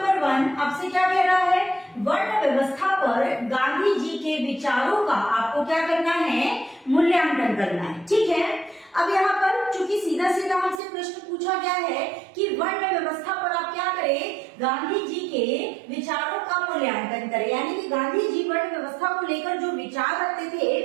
1 आपसे क्या कह रहा है, वर्ण व्यवस्था पर गांधी जी के विचारों का आपको क्या करना है, मूल्यांकन करना है। ठीक है, अब यहाँ पर चूंकि सीधा सीधा हमसे प्रश्न पूछा गया है कि वर्ण व्यवस्था पर आप क्या करें, गांधी जी के विचारों का मूल्यांकन करें। यानी कि गांधी जी वर्ण व्यवस्था को लेकर जो विचार रखते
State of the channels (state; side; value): drops out; left; at 10.8 s